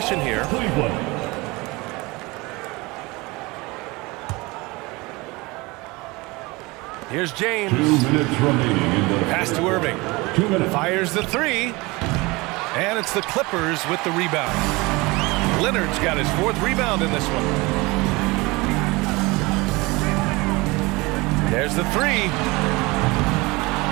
here. Here's James. 2 minutes remaining in the pass to Irving. 2 minutes. Fires the 3. And it's the Clippers with the rebound. Leonard's got his 4th rebound in this one. There's the 3.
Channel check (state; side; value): quieter; left; 23.6 dB